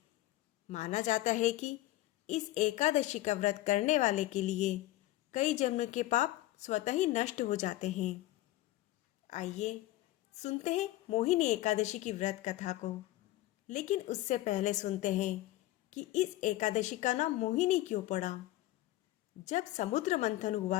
माना जाता है कि इस एकादशी का व्रत करने वाले के लिए कई जन्म के पाप स्वतः ही नष्ट हो जाते हैं। आइए सुनते हैं मोहिनी एकादशी की व्रत कथा को। लेकिन उससे पहले सुनते हैं कि इस एकादशी का नाम मोहिनी क्यों पड़ा। जब समुद्र मंथन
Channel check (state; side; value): quieter; right; 16.1 dB